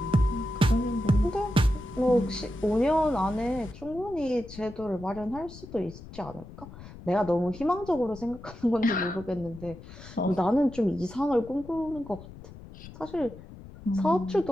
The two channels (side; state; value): left; noise; rumble, 16 dB below the sound